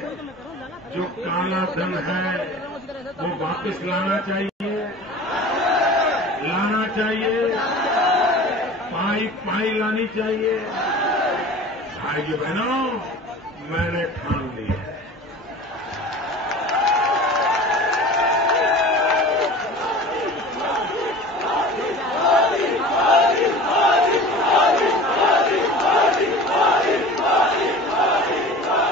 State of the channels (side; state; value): both; normal; correlation 0.39